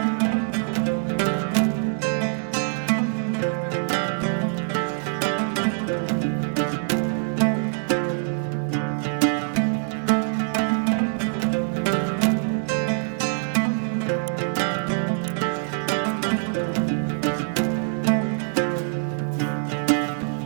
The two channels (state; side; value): silent; left; digital silence